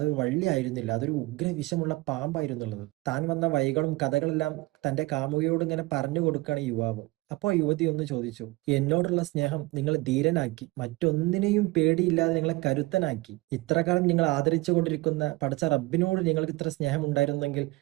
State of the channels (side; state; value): left; quieter; 21.4 dB